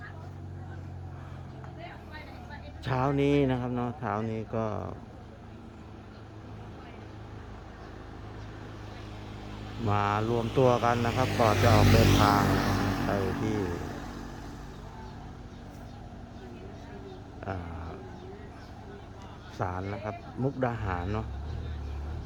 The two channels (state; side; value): identical; both; correlation 1.00